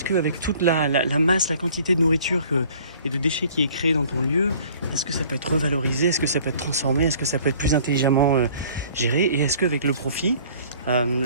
qu'avec toute la masse, la quantité de nourriture et de déchets qui est créée dans ton lieu, est-ce que ça peut être revalorisé? Est-ce que ça peut être transformé? Est-ce que ça peut être plus intelligemment géré? Et est-ce qu'avec le profit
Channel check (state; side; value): inverted; both; correlation -0.53